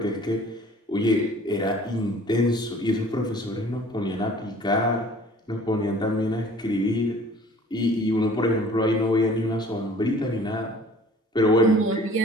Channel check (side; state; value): both; normal; correlation 0.50